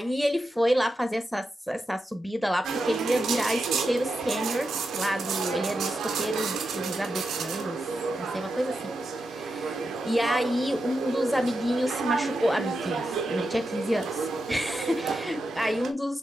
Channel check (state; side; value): normal; both; correlation 0.88